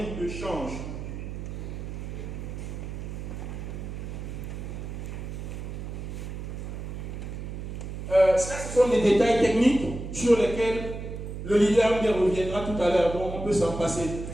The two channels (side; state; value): right; noise; hum, 7 dB below the sound